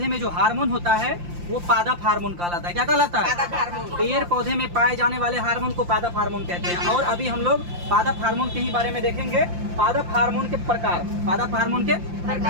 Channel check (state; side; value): late; left; 5.7 ms